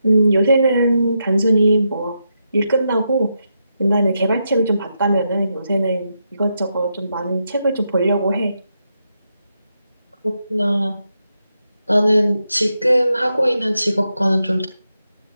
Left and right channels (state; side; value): inverted; both; correlation -0.84